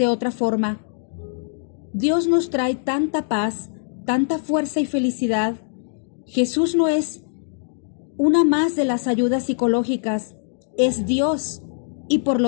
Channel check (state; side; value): silent; right; digital silence